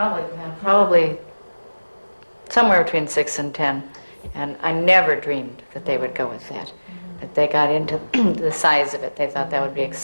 somewhere between 6 and 10. And I never dreamed that they would go with that. That they got into the size of it. They thought that would be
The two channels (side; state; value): both; inverted; correlation -1.00